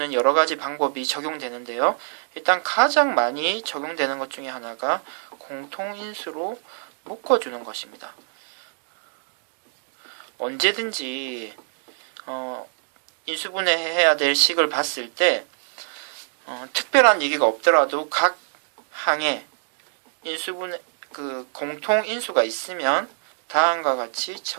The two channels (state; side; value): silent; left; digital silence